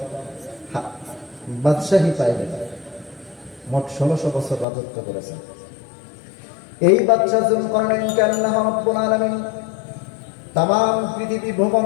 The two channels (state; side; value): drops out; right; at 4.7 s